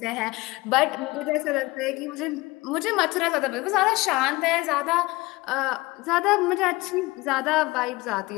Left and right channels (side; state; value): right; quieter; 21.7 dB